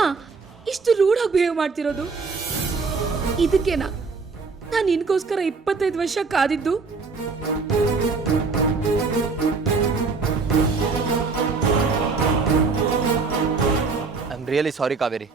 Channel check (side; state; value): left; quieter; 4.5 dB